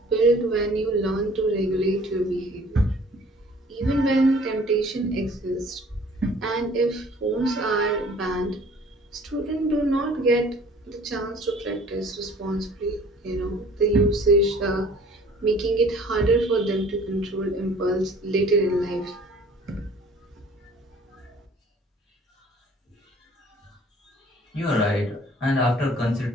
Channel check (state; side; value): normal; both; correlation 0.52